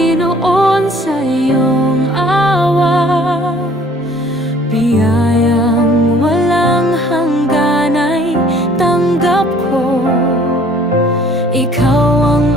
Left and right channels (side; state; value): both; normal; correlation 0.56